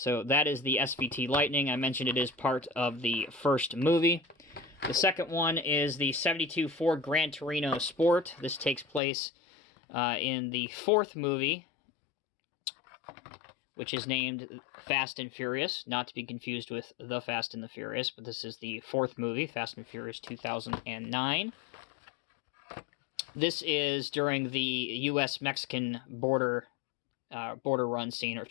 that is the SVT Lightning. I mentioned it is part of the first movie. The second one is the 72 Ford Gran Torino Sport. This takes place in the fourth movie, which is named Fast and Furious, not to be confused with The Fast and the Furious, but this is the fourth movie, Fast and Furious 2009. This is during the U.S.-Mexican border run scene, or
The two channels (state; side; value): drops out; right; at 9.0 s